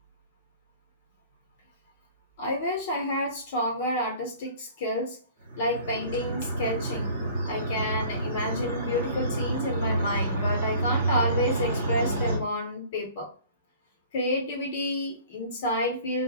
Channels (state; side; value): inverted; both; correlation -0.48